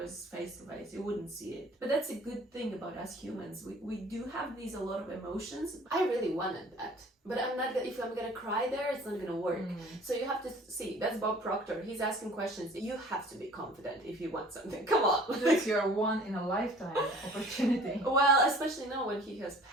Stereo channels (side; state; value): both; normal; correlation 0.50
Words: face to face, you wouldn't see it. But that's a good thing about us humans. We do have a lot of emotions. I really wanted that. But I'm not, if I'm gonna cry there, it's not gonna work. So you have to see, that's Bob Proctor. He's asking questions. You have to be confident if you want something. Come on. That's your one in a lifetime opportunity. Well, especially now when he has